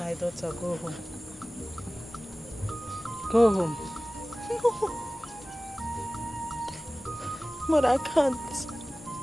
daughter, go home. Go home. No. But I can't.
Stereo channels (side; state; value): both; normal; correlation 0.98